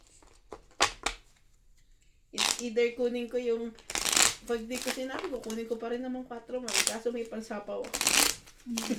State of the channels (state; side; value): identical; both; correlation 1.00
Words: It's either kunin ko yung pag di ko sinabi ko, kunin ko pa rin naman 4 man. Kaso may pansapaw ako.